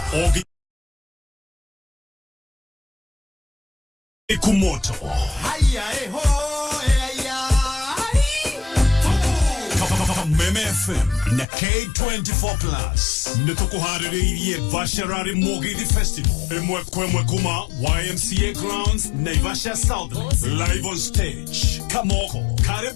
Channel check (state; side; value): drops out; right; at 11.5 s